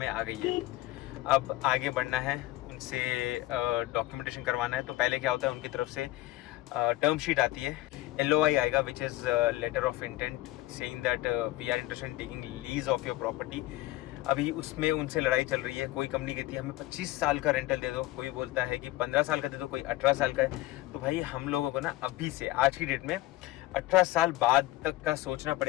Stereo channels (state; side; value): quieter; right; 17.1 dB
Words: आ गई है। अब आगे बढ़ना है, उनसे डॉक्यूमेंटेशन करवाना है। तो पहले क्या होता है, उनकी तरफ से टर्म शीट आती है, LOI आएगा, which is letter of intent saying that we are interested in taking lease of your property. अभी उसमें उनसे लड़ाई चल रही है। कोई कंपनी कहती है हमें 25 साल का रेंटल दे दो, कोई बोलता है कि 15 साल का दे दो, कोई 18 साल का है। तो भाई हम लोगों को ना अभी से, आज की डेट में 18 साल बाद तक का सोचना